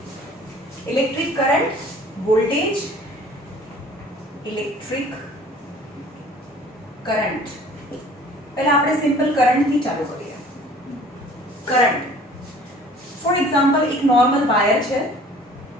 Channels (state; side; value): normal; both; correlation 0.50